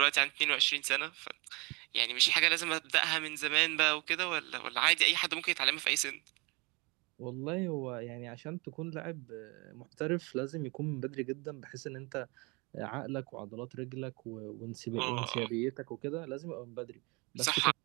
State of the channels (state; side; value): quieter; left; 27.8 dB